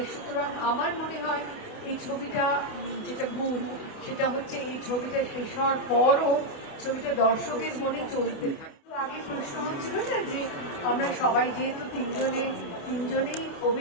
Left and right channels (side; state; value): right; late; 28 ms